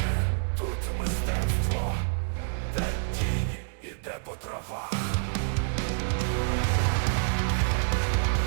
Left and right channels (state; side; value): silent; left; 59 dB below the other